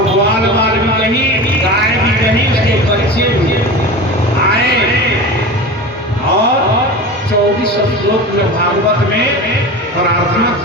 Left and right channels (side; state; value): both; normal; correlation 0.30